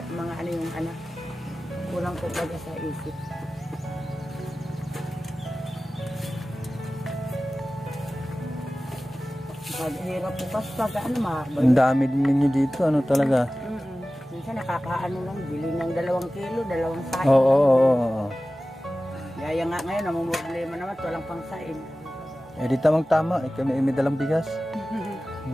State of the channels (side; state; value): both; normal; correlation 0.96